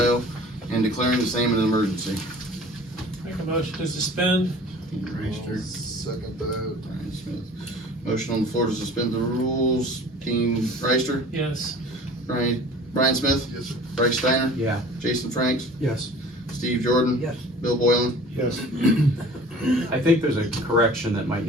and declaring the same an emergency. Make a motion to suspend. Dean Reister, Second that. Brian Smith. Motion on the floor to suspend the rules. Dean Reister, Yes. Brian Smith, Yes, sir. Bryce Steiner, yeah. Jason Franks, Yes. Steve Jordan, Yes. Bill Boylan. Yes. I think there's a correction that might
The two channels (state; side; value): normal; both; correlation 0.45